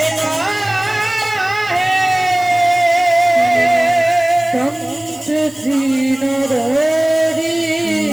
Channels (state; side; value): noise; right; hiss, 23 dB below the sound